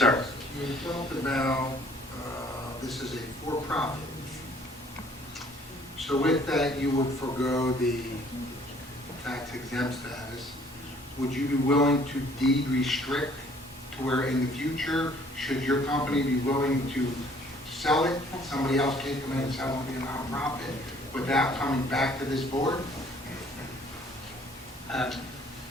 You talked about this is a for-profit. So with that, you would forego the tax exempt status. Would you be willing to deed restrict to where in the future, should your company be willing to sell it, somebody else can come in and sell it and be a nonprofit without coming back to this board?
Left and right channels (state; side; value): normal; both; correlation 0.58